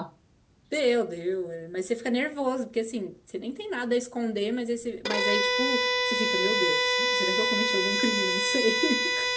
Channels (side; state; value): both; identical; correlation 1.00